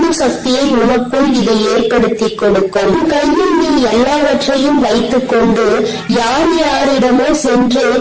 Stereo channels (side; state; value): both; identical; correlation 1.00